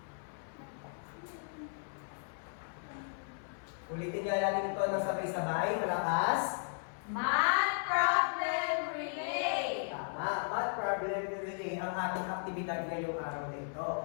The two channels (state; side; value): silent; right; 54 dB below the other